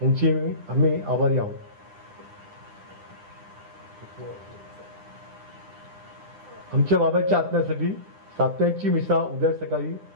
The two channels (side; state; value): left; late; 9.9 ms